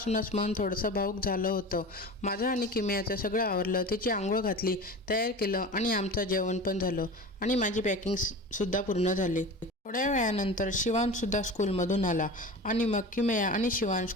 मन थोडंसं भावुक झालं होतं। माझं आणि किमयाचं सगळं आवरलं, तिची आंघोळ घातली, तयार केलं आणि आमचं जेवण पण झालं आणि माझी पॅकिंग सुद्धा पूर्ण झाली। थोड्या वेळानंतर शिवांशसुद्धा स्कूलमधून आला आणि मग किमया आणि शिवांश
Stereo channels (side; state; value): both; normal; correlation 0.33